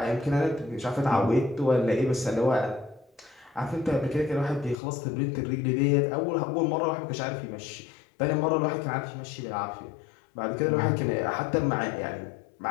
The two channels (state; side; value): drops out; right; at 4.8 s